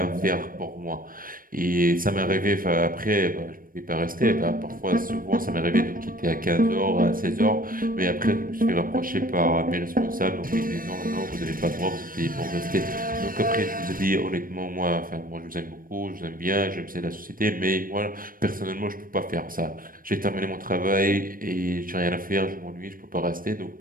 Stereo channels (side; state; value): left; late; 0.41 ms